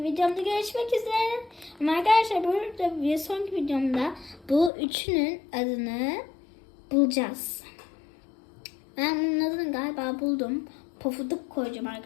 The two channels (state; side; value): drops out; right; at 4.7 s